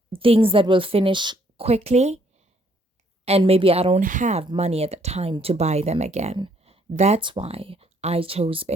things that will finish quickly, and maybe I don't have money at the time to buy them again. That's why I chose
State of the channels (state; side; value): normal; both; correlation 0.67